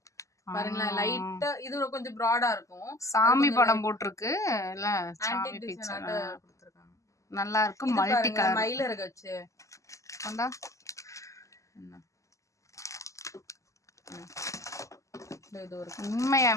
பாருங்களேன். லைட்டா இது கொஞ்சம் ப்ராடா இருக்கும். சாமி படம் போட்டிருக்கு இல்ல, சாமி ஆன்டிக் பிக்சர் கொடுத்துருக்காங்க. நல்லா இருக்கு. மல்டி கலர் மயில இறக வச்சு கொண்டா.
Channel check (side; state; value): right; late; 0.16 ms